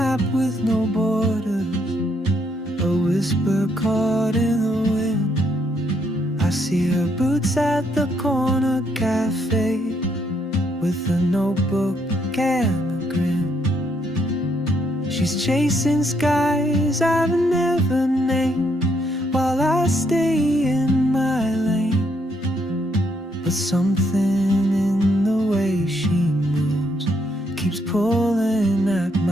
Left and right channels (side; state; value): both; normal; correlation 0.73